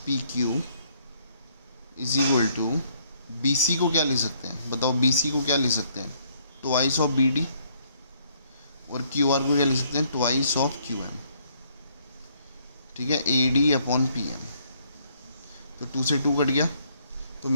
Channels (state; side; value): inverted; both; correlation -0.67